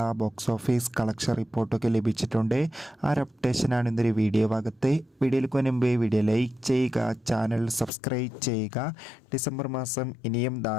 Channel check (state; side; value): drops out; right; at 7.9 s